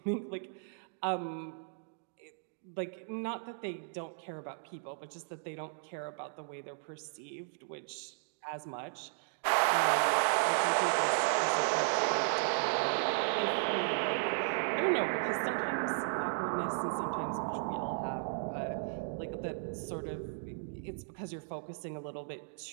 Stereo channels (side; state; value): left; silent; digital silence